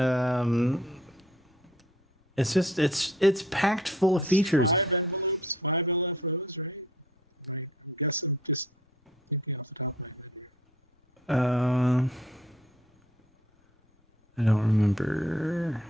It's just it's packed full of features. 5 LFOs, right? I guess I'm just thinking off the top of my head. I don't remember.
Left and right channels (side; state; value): both; normal; correlation 0.57